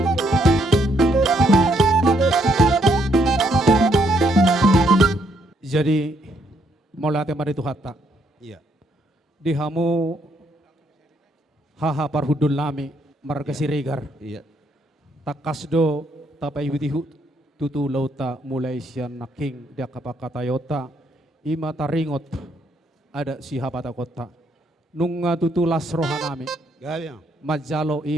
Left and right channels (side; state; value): both; normal; correlation 0.72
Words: Jadi mulai tema itu hatta. Iya. Di hamu haha parhudul nami marga siregar. Iya. Takasdo tapai widihu tutu lauta mulai sian naking dia kapakata yota ima taringot ada si hapata kota nunga tutu las rohanami Gaya. majalo